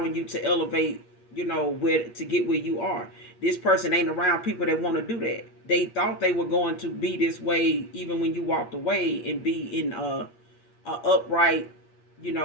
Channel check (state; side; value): late; right; 8.5 ms